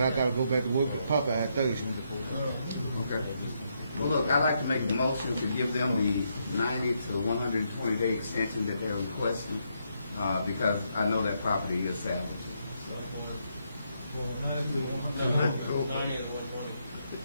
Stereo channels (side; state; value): both; inverted; correlation -0.78